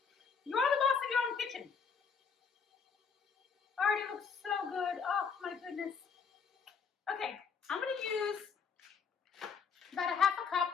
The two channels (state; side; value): quieter; right; 6.0 dB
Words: you're the boss of your own kitchen. Already looks so good. Oh my goodness. Okay, I'm going to use about a half a cup,